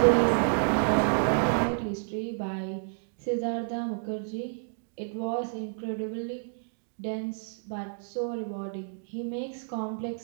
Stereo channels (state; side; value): silent; left; digital silence